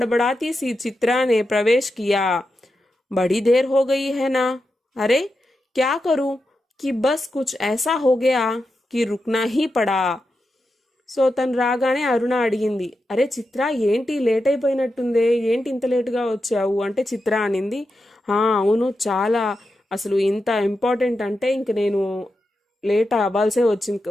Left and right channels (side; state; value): both; normal; correlation 0.88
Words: सी चित्रा ने प्रवेश किया. बड़ी देर हो गई है ना. अरे क्या करूं कि बस कुछ ऐसा हो गया कि रुकना ही पड़ा. సో తను రాగానే అరుణ అడిగింది, అరే చిత్ర ఏంటి లేట్ అయిపోయినట్టుందే, ఏంటి ఇంత లేటుగా వచ్చావు అంటే చిత్ర అనింది, అవును చాలా, అసలు ఇంత ఇంపార్టెంట్ అంటే ఇంక నేను లేట్ అవ్వాల్సే వచ్చింది,